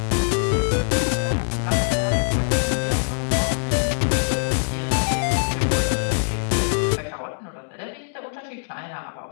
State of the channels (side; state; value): right; silent; digital silence